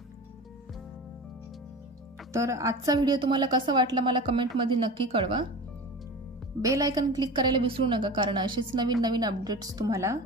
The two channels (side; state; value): both; normal; correlation 0.33